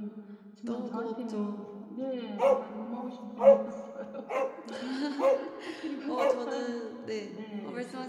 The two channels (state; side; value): identical; both; correlation 1.00